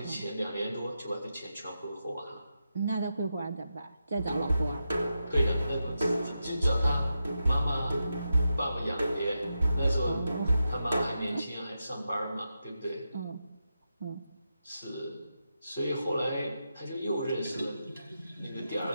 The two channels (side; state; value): both; inverted; correlation -0.88